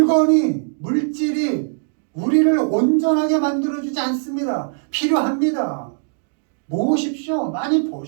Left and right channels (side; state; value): left; silent; digital silence